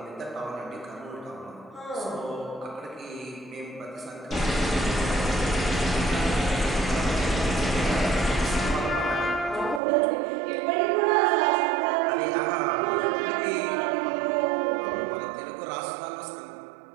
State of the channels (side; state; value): left; drops out; at 9.8 s